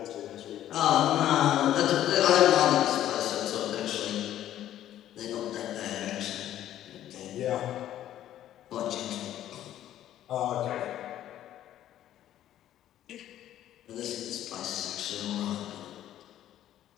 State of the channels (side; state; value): right; quieter; 12.1 dB